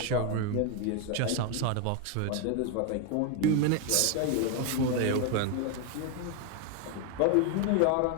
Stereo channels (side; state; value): both; different; correlation 0.01